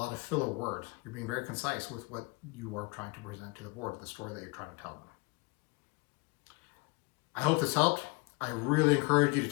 of filler words. You're being very concise with what you are trying to present to the board, the story that you're trying to tell them. I hope this helped. I really encourage you to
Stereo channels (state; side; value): quieter; right; 26.2 dB